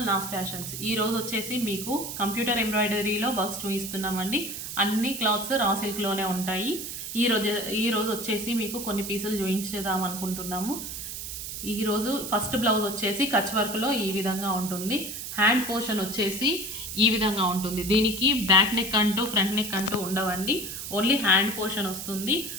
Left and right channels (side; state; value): right; noise; hiss, 7 dB below the sound